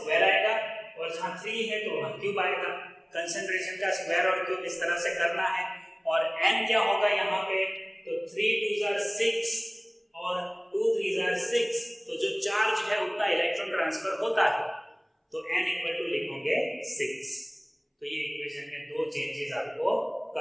आएगा और जहां 3 है तो वहां क्यूब आएगा। कंसंट्रेशन का स्क्वायर और क्यूब इस तरह से करना है। और n क्या होगा यहाँ पे, तो 3 2s are 6 और 2 3s are 6, तो जो चार्ज है उतना इलेक्ट्रॉन ट्रांसफर होता है, तो n इक्वल टू लिखोगे 6। तो ये इक्वेशन में दो चेंजेस आपको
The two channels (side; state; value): both; identical; correlation 1.00